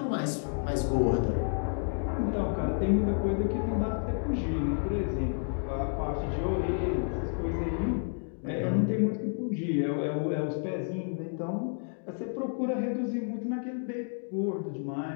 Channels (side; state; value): right; silent; 57 dB below the other